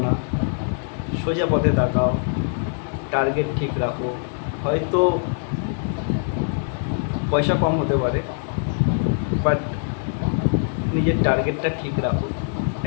না, সোজা পথে তাকাও, টার্গেট ঠিক রাখো। হয়তো পয়সা কম হতে পারে, বাট নিজের টার্গেটটা ঠিক রাখো,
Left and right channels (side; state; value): right; silent; digital silence